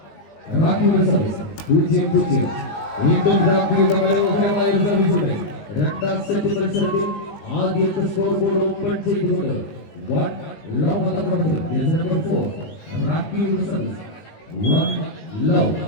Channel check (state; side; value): late; right; 19 ms